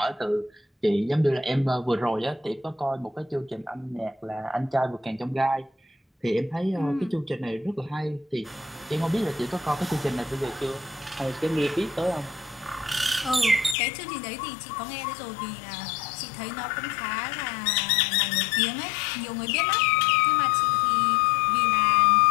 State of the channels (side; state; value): right; drops out; at 13.8 s